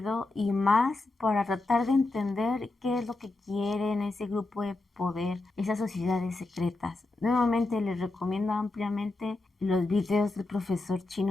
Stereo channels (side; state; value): right; quieter; 3.1 dB